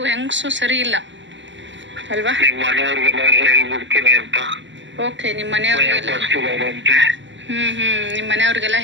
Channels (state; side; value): late; left; 0.54 ms